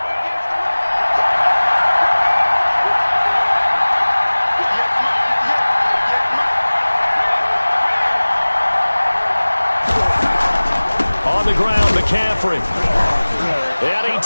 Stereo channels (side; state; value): both; inverted; correlation -1.00